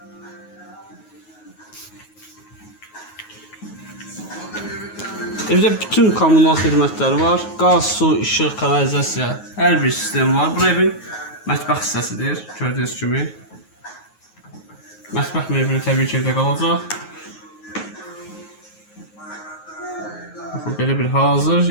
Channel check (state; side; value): late; right; 9.4 ms